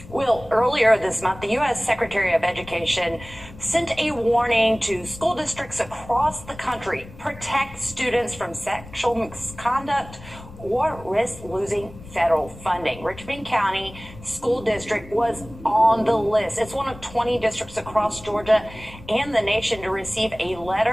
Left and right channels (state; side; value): noise; left; rumble, 18 dB below the sound